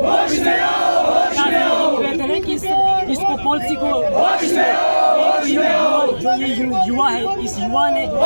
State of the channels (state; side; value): inverted; both; correlation -1.00